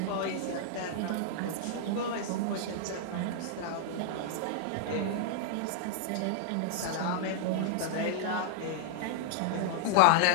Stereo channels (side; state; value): both; different; correlation -0.01